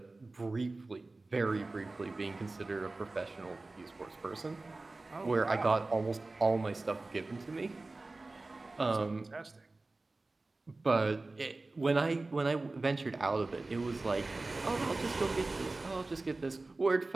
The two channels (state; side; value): quieter; left; 3.2 dB